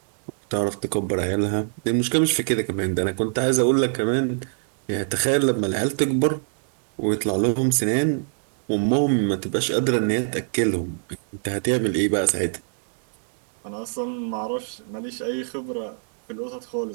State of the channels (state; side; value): silent; left; 62 dB below the other